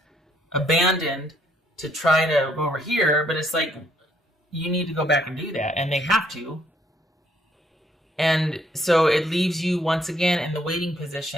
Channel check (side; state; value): both; normal; correlation 0.68